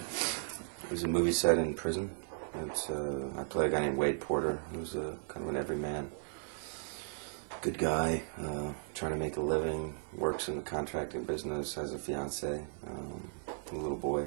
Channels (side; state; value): left; silent; 54 dB below the other